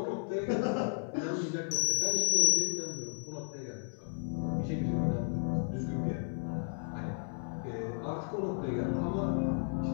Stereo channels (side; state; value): right; silent; digital silence